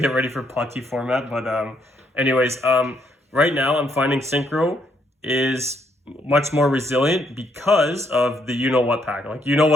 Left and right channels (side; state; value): both; normal; correlation 0.73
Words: ready for POTE format. But anyways, right now I'm finding synchro is much more resilient because of the what pack. Like,